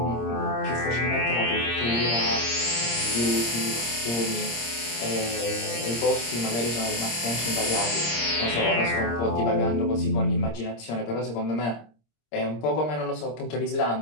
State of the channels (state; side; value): late; right; 26 ms